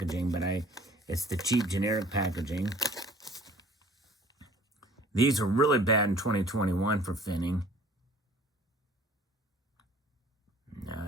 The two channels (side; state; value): both; normal; correlation 0.51